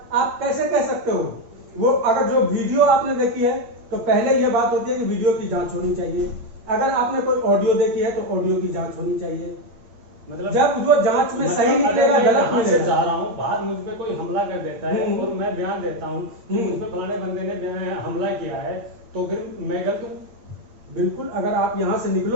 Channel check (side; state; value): left; late; 8.6 ms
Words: आप कैसे कह सकते हो? वो अगर जो वीडियो आपने देखी है तो पहले ये बात होती है कि वीडियो की जांच होनी चाहिए। अगर आपने कोई ऑडियो देखी है तो ऑडियो की जांच होनी चाहिए। मतलब जब जो जांच में सही निकलेगा, गलत मिलेगा। जा रहा हूँ बाहर, मुझ पे कोई हमला कर देता है और मैं बयान देता हूँ कि मुझ पे फलाने बंदे ने हमला किया है, तो फिर मैं गलत हूँ? बिल्कुल। अगर आप यहाँ से